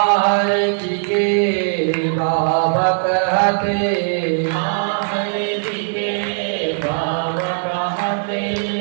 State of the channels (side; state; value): left; silent; digital silence